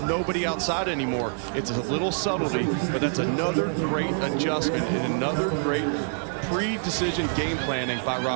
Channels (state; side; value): silent; left; 61 dB below the other